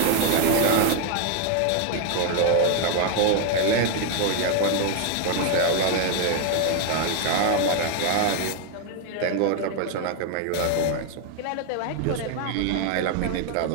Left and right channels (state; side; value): different; both; correlation 0.01